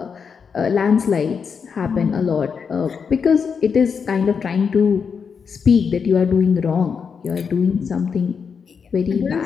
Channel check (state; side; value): quieter; right; 6.2 dB